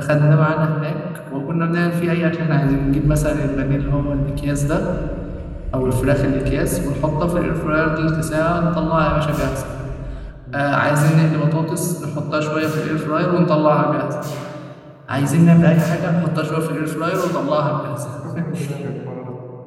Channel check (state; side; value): identical; both; correlation 1.00